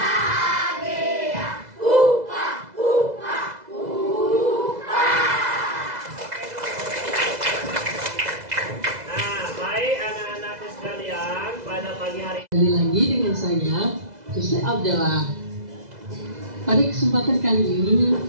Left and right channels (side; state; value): left; late; 2.0 ms